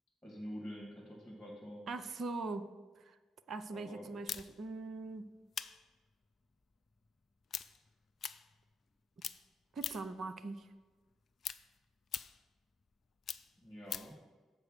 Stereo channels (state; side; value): normal; both; correlation 0.75